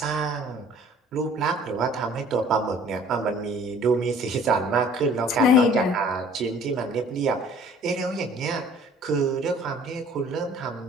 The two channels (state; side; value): normal; both; correlation 0.52